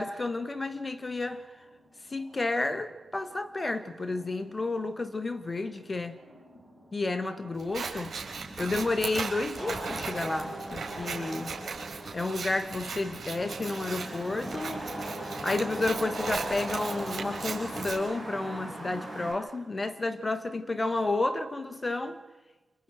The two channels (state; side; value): normal; both; correlation 0.92